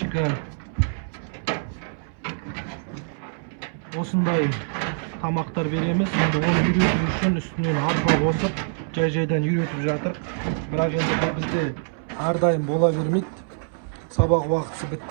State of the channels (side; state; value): left; silent; 62 dB below the other